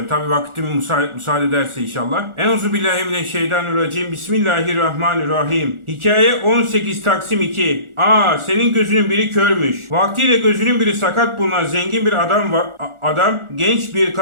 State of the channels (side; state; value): left; late; 1.4 ms